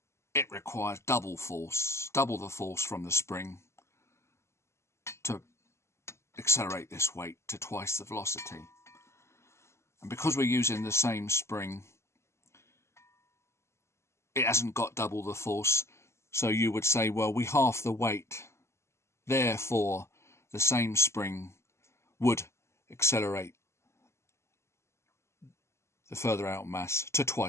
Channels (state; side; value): late; right; 0.13 ms